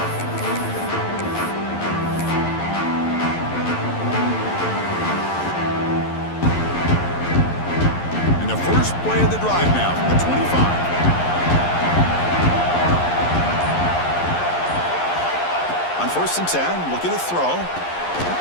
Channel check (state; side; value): late; right; 11 ms